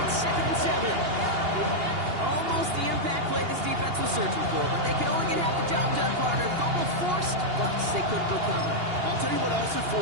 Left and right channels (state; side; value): late; left; 2.8 ms